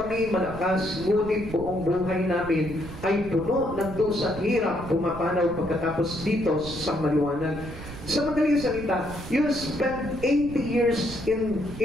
malakas, ngunit buong buhay namin ay puno ng dusa at hirap, pumapanaw pagkatapos dito sa maliwanag. Sa madaling salita, you spend 80 years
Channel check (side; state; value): right; noise; rumble, 12 dB below the sound